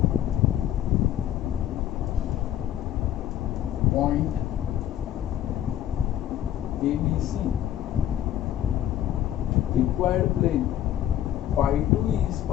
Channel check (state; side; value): quieter; right; 11.5 dB